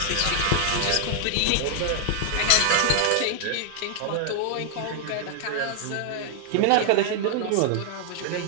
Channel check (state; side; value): different; both; correlation 0.00